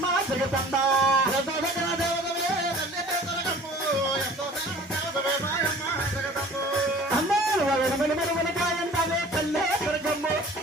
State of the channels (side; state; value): both; normal; correlation 0.47